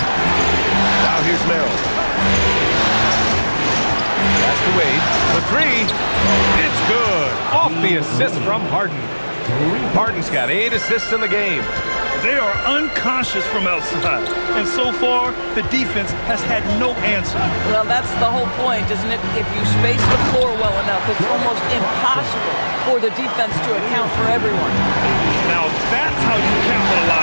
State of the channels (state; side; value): inverted; both; correlation -1.00